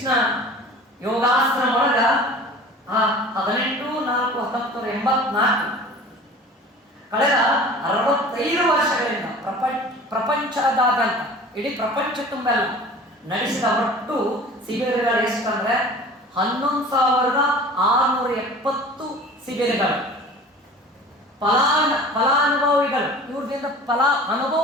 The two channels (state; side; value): normal; both; correlation 0.42